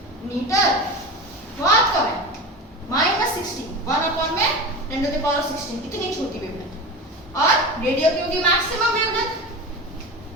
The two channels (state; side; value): normal; both; correlation 0.28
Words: metre. बहुत कम है, -16, 1 अपॉन में 10 to the power of 16, इतनी छोटी वेवलेंथ। और रेडियो की होगी maximum wavelength